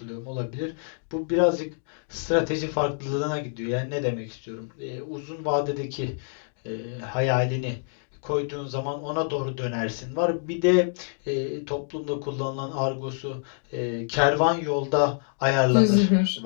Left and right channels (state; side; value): silent; right; digital silence